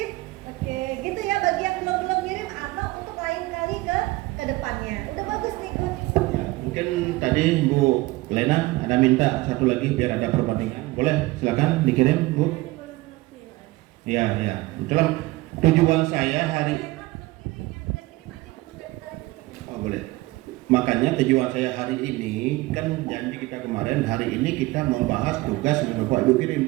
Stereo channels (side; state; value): left; quieter; 20.3 dB